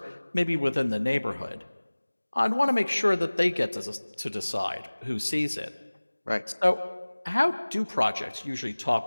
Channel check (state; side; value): inverted; both; correlation -1.00